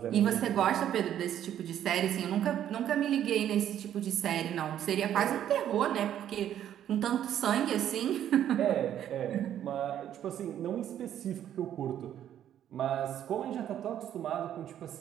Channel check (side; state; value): left; quieter; 10.7 dB